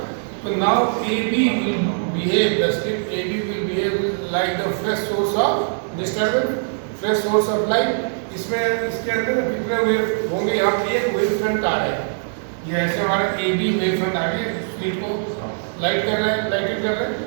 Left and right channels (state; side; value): silent; left; digital silence